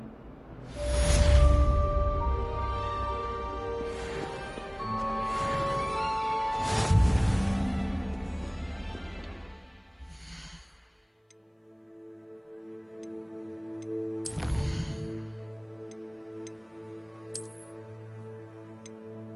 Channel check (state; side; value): identical; both; correlation 1.00